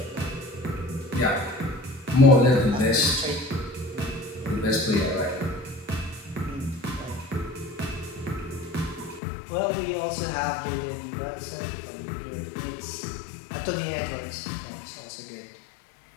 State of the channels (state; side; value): drops out; right; at 9.2 s